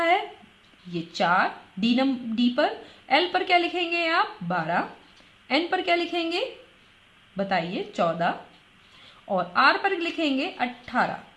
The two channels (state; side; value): identical; both; correlation 1.00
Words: है, ये 4, d पर, l पर क्या लिखेंगे आप 12, n पर क्या लिखेंगे बताइए 14 और r पर लिखेंगे 18।